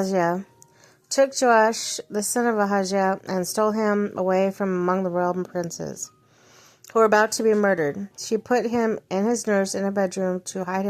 took Joash, the son of Ahaziah, and stole him away from among the royal princes, who were about to be murdered. She put him and his nurse in a bedroom to hide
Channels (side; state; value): both; identical; correlation 1.00